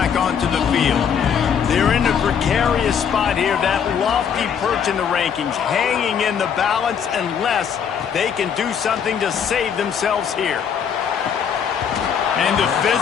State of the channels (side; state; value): right; quieter; 7.6 dB